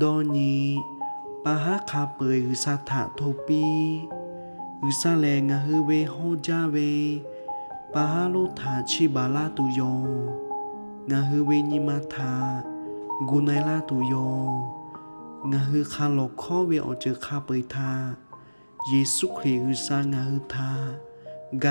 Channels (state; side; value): inverted; both; correlation -1.00